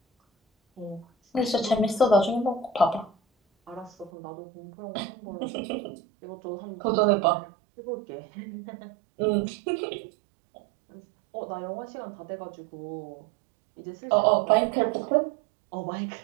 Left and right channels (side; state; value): left; drops out; at 4.1 s